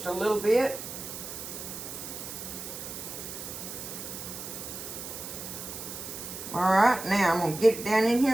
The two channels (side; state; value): right; noise; hiss, 9 dB below the sound